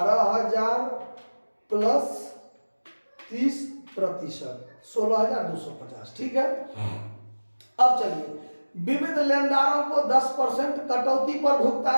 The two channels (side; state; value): both; inverted; correlation -1.00